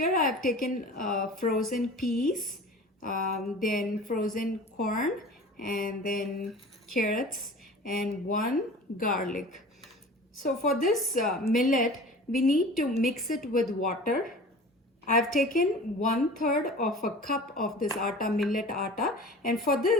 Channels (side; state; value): both; normal; correlation 0.39